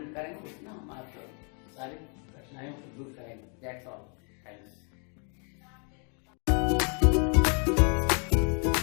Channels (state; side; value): quieter; right; 39.6 dB